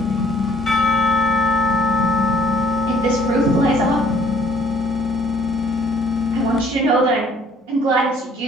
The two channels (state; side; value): normal; both; correlation 0.59